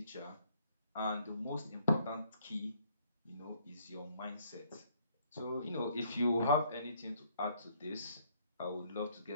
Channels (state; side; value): inverted; both; correlation -0.65